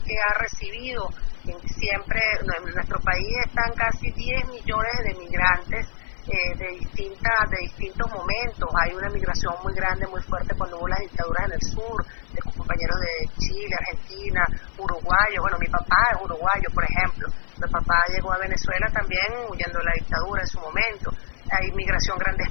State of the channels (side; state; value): right; silent; 55 dB below the other